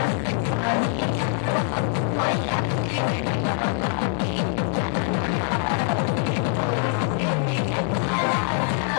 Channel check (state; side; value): silent; right; 63 dB below the other